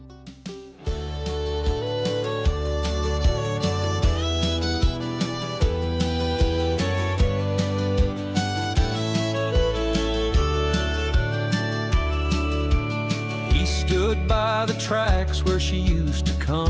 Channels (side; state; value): both; identical; correlation 1.00